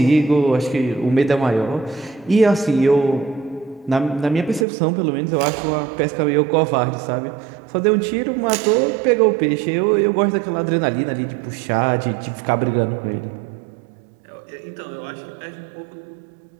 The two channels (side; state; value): left; drops out; at 4.7 s